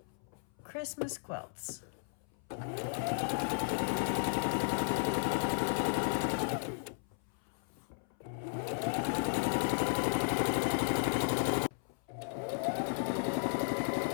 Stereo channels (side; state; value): right; silent; 54 dB below the other